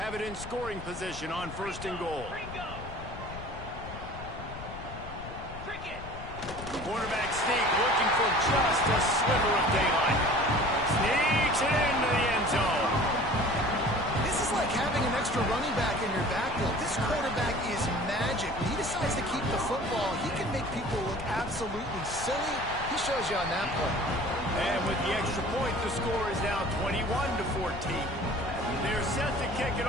it in scoring position on first and goal. Quarterback sneak looking for just a sliver of daylight. Sneaks it into the end zone. This is like having an extra running back in your backfield. This quarterback is magic. When he decides to keep the football, he can make people look absolutely silly. He shows you on that play. And with the extra point, the score is now 21-14. They're set to kick it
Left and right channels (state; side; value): noise; left; rumble, 12 dB below the sound